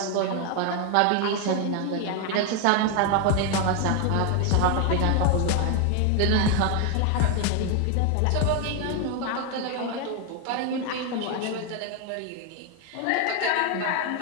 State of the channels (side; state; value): both; different; correlation 0.01